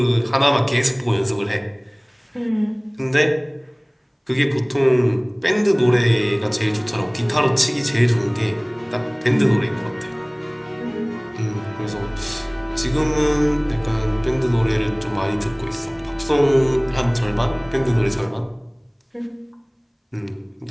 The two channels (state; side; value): identical; both; correlation 1.00